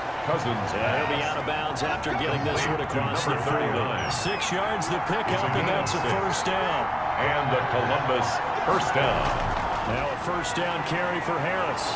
Cousins. He'll be out of bounds after getting this one across the 40. 6 yards the pickup, and that's a first down. And the Columbus first down. Now a first down carry for Harris.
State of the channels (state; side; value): identical; both; correlation 1.00